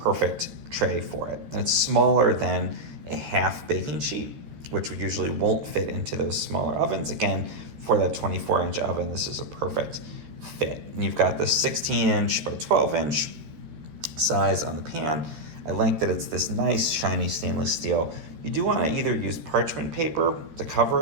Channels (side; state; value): left; late; 13 ms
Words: tray for it. And it's smaller than a half baking sheet, which we usually won't fit into those smaller ovens. Again, for that 24-inch oven, this is a perfect fit. And you've got the 16-inch by 12-inch size on the pan. I like that it's this nice shiny stainless steel. You do want to either use parchment paper to